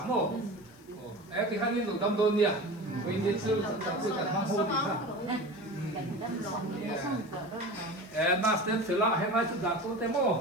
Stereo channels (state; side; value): noise; left; hiss, 29 dB below the sound